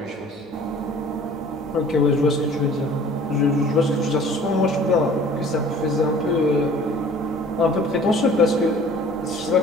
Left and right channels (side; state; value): both; normal; correlation 0.49